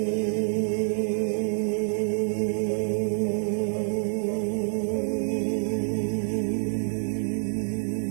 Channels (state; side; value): silent; left; 60 dB below the other